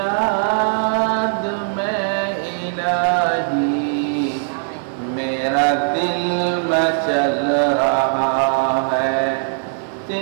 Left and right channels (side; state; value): left; silent; digital silence